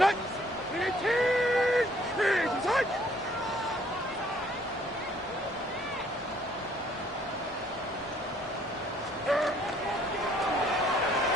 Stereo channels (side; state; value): both; normal; correlation 0.62